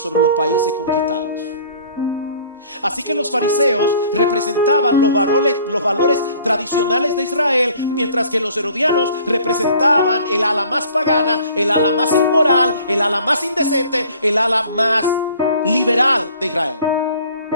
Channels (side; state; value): both; inverted; correlation -0.53